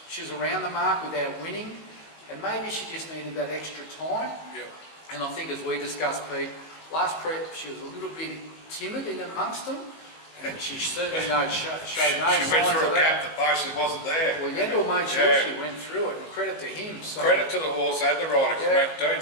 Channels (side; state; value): right; late; 19 ms